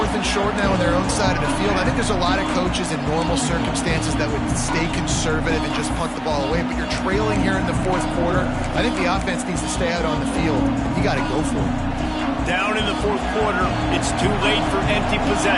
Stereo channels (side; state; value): both; identical; correlation 1.00